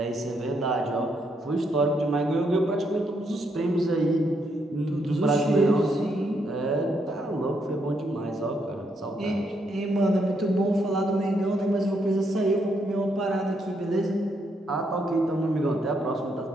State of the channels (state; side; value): normal; both; correlation 0.76